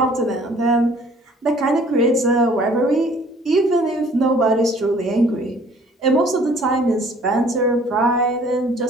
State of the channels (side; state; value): both; normal; correlation 0.55